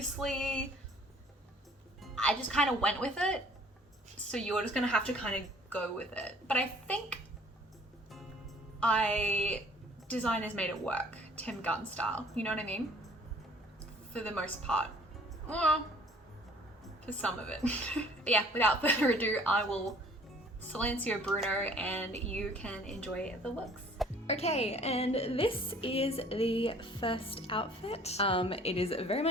I just kind of went with it, so you're just gonna have to kind of go with it. But I think designers made it work, Tim Gunn style, you know what I mean? For the most part. Well, for some of it. But yeah, without further ado, I will Silencio Bruno and you can enjoy the looks. Okay, and this is the first outfit. It is very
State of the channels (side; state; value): both; normal; correlation 0.54